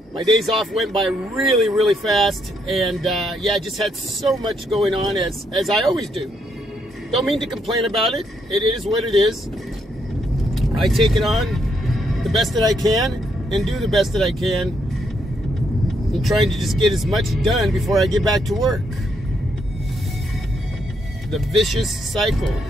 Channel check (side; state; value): both; normal; correlation 0.76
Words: My days off went by really, really fast. And yeah, I just had so much going on as I always do. Don't mean to complain about it. It is what it is. I take it on the best that I can and do the best that I can. I'm trying to just get as much done before I get back to work. The vicious cycle